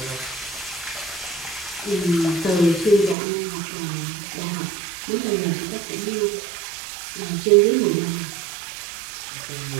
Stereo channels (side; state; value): left; drops out; at 3.2 s